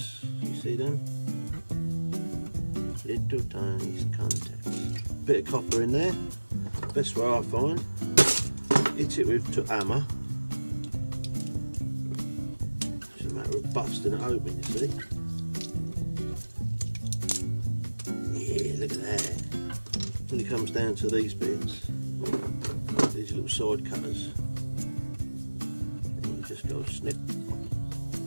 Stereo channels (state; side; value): inverted; both; correlation -1.00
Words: You see them? Little tiny contacts. Bit of copper in there. Best way I find. Hit it with a hammer. It's a matter of busting it open, you see. Yeah, look at that. When it comes down to these bits, these little side cutters, and you just go snip.